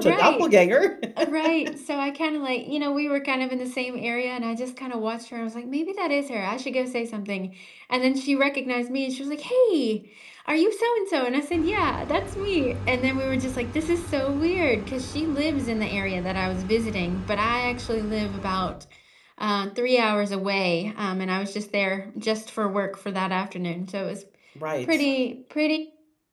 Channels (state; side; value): identical; both; correlation 1.00